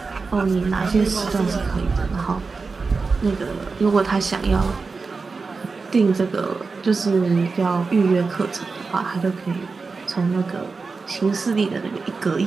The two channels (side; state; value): left; quieter; 4.4 dB